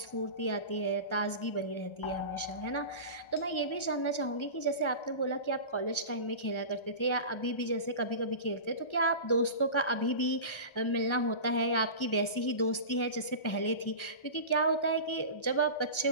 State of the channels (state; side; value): late; right; 1.3 ms